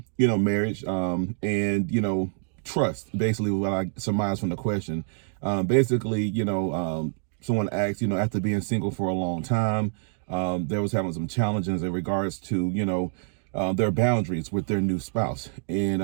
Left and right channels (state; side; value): silent; left; digital silence